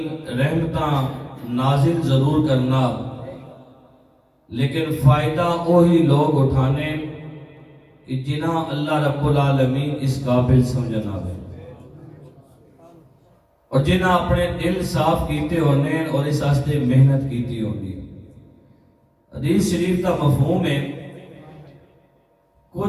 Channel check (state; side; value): identical; both; correlation 1.00